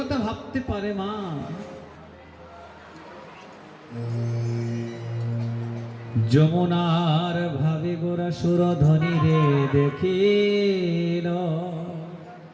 ভাবতে পারে মা, যমুনার ভাবে গোরা সুরধ্বনি রে দেখিল,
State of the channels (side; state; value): both; identical; correlation 1.00